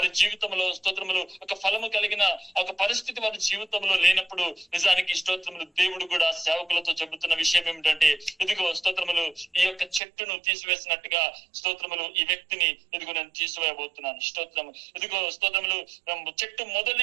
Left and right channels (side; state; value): left; drops out; at 10.0 s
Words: జీవితంలో స్తోత్రములు ఒక ఫలము కలిగిన ఒక పరిస్థితి వారి జీవితంలో లేనప్పుడు నిజానికి స్తోత్రములు దేవుడు కూడా సేవకులతో చెబుతున్న విషయం ఏమిటంటే, ఇదిగో స్తోత్రములు ఈ యొక్క చెట్టును తీసివేసినట్టుగా స్తోత్రములు ఈ వ్యక్తిని ఇదిగో నేను తీసివేయబోతున్నాను. స్తోత్రము. ఇదిగో స్తోత్రములు చెట్టు